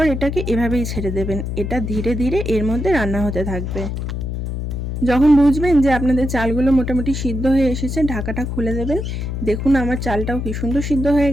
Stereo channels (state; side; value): noise; left; hum, 4 dB below the sound